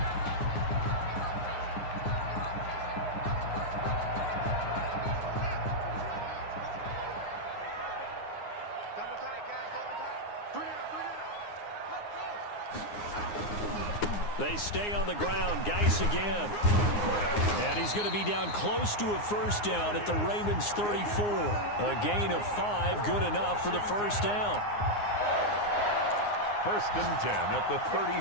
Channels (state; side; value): late; right; 9.7 ms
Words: Double tight, guys, double tight. 3 down. Let's go. They stay on the ground. Geis again. And he's going to be down close to a 1st down at the Ravens 34. A gain of 5, good enough for the 1st down. 1st and 10 at the